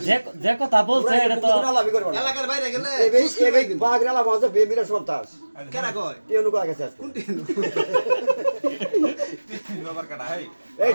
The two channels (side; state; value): both; inverted; correlation -1.00